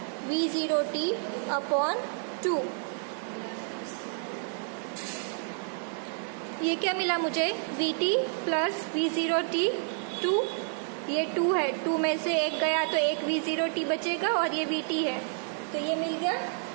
v0t अपॉन 2। ये क्या मिला मुझे, vt प्लस v0t 2, ये 2 है, 2 में से एक गया तो एक v0t बचेगा और ये vt है, तो ये मिल गया।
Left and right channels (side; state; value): left; silent; 57 dB below the other